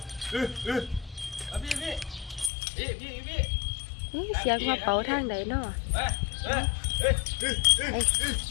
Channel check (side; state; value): right; drops out; at 2.5 s